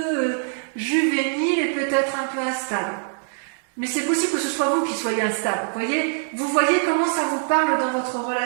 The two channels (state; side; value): silent; left; digital silence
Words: juvénile et peut-être un peu instable. Mais c'est possible que ce soit vous qui soyez instable. Vous voyez comment ça vous parle dans votre